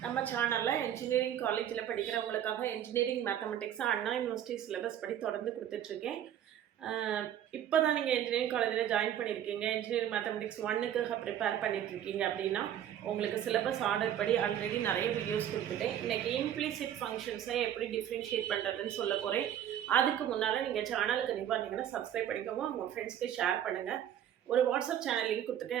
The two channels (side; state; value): left; quieter; 10.5 dB